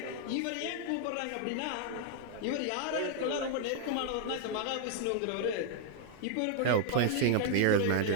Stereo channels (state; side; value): different; both; correlation 0.00